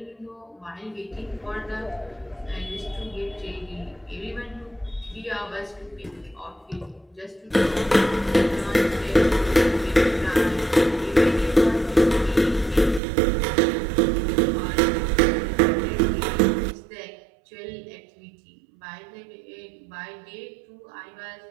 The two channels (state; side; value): drops out; left; at 13.0 s